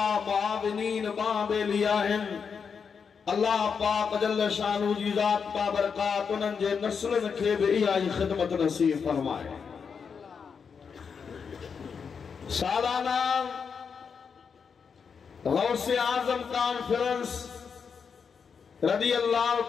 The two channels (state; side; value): quieter; right; 6.2 dB